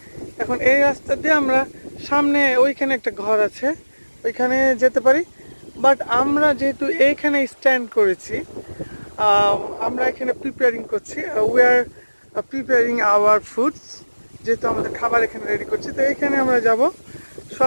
এখন এই রাস্তা দিয়ে আমরা সামনে, ওইখানে একটা ঘর আছে, ওইখানে যেতে পারি। বাট আমরা যেহেতু এইখানে স্ট্যান্ড করেছি, আমরা এখানে প্রিপেয়ারিং করছি, we are preparing our foods, যেহেতু আমাদের খাবার এখানে রেডি করছি। তো এইখানে আমরা যাব,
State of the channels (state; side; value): inverted; both; correlation -1.00